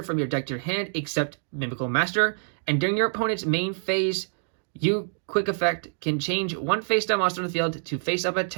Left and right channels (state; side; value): silent; left; digital silence